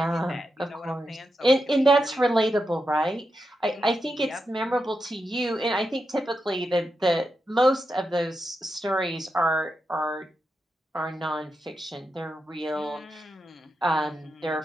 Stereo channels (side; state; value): both; normal; correlation 0.87